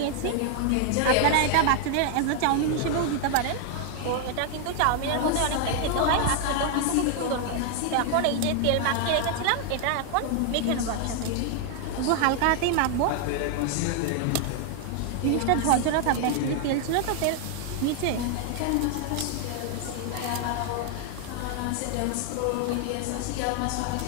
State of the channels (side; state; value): both; different; correlation 0.00